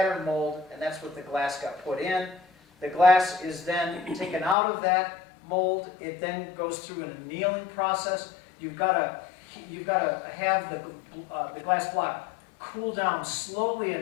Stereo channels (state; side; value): drops out; right; at 4.5 s